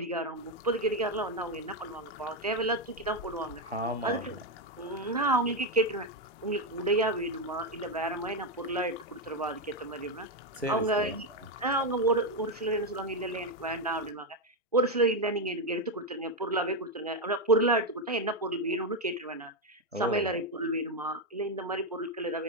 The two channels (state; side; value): normal; both; correlation 0.06